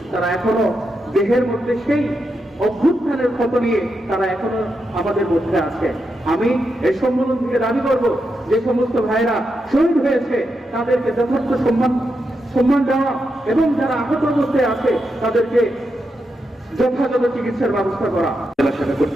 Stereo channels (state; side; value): normal; both; correlation 0.85